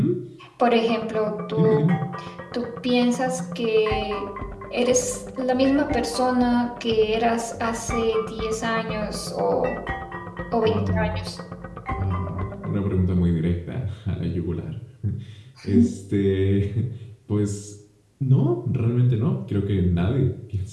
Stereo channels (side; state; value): both; identical; correlation 1.00